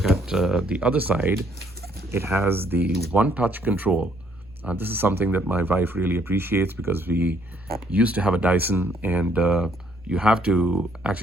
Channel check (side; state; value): right; noise; rumble, 26 dB below the sound